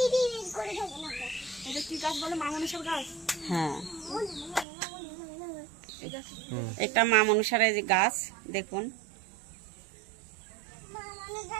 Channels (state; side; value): drops out; left; at 4.7 s